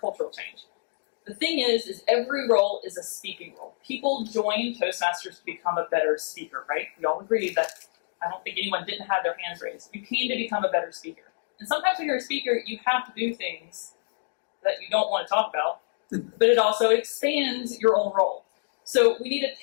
cultural change. The thing is every role is a speaking role. People join Toastmasters to become a better speaker, right? We all agree that I don't think anyone didn't have their hands raised. You came to become a better speaker. And sometimes when you're a speaker, you have to do things that you don't want to talk about, but it also expands your own role. So we need to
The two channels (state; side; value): silent; right; digital silence